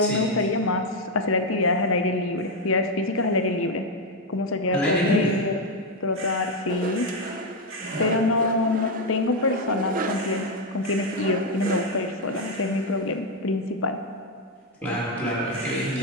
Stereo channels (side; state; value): both; normal; correlation 0.04